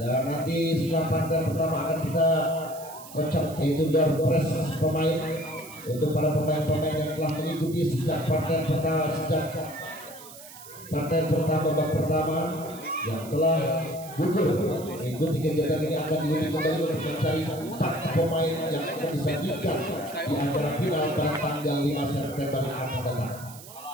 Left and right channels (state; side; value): noise; right; hiss, 17 dB below the sound